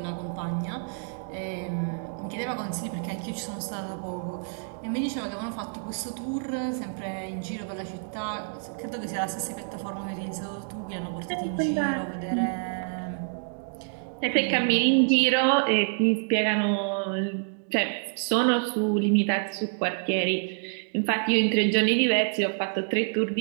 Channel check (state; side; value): silent; left; digital silence